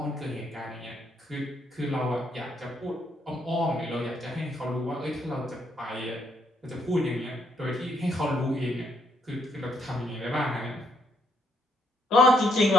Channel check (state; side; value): normal; both; correlation 0.73